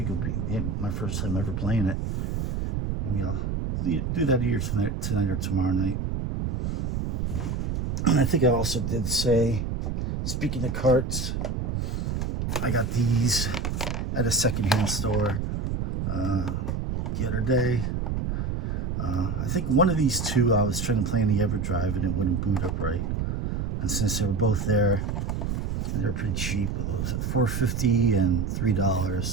it'll be my first time ever playing it. Maybe I'll do that either tonight or tomorrow night. And I think I also did say, speaking of carts, I got these at a secondhand store. the other day. I think one of these two I was trying to play on the EverDrive and it wouldn't boot up right. And since they were both there, and they were pretty cheap, it was at $4.50 and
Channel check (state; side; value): noise; right; rumble, 2 dB below the sound